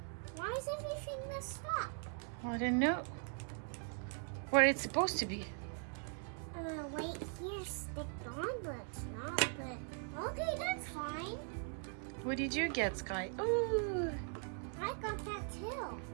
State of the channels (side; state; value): left; silent; 51 dB below the other